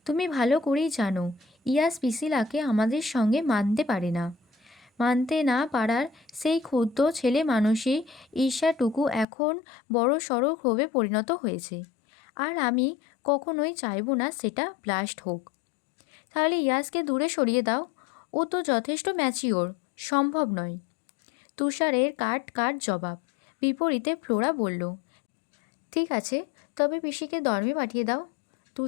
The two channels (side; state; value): right; drops out; at 9.2 s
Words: তুমি ভালো করেই জানো ইয়াস পিসিলাকে আমাদের সঙ্গে মানতে পারে না। মানতে না পারার সেই ক্ষুদ্র ছেলে মানুষই ঈর্ষাটুকু এখন বড় সড়ো ক্ষোভে পরিণত হয়েছে। আর আমি কখনোই চাইব না সেটা ব্লাস্ট হোক। তাহলে ইয়াসকে দূরে সরিয়ে দাও, ও তো যথেষ্ট ম্যাচিওর। সম্ভব নয়। তুষারের কাট জবাব। বিপরীতে ফ্লোরা বলল, ঠিক আছে, তবে পিসিকে ধর্মে পাঠিয়ে দাও।